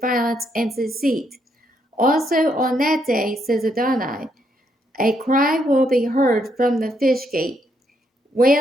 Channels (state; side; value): normal; both; correlation 0.75